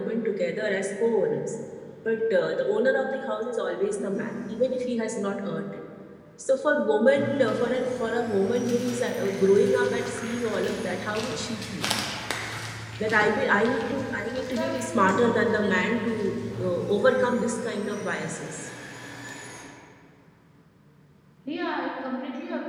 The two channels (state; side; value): identical; both; correlation 1.00